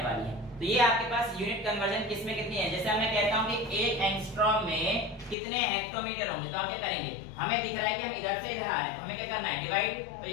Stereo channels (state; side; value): drops out; right; at 5.4 s